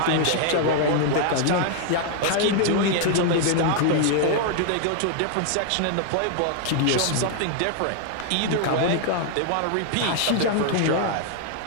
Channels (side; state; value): both; different; correlation 0.00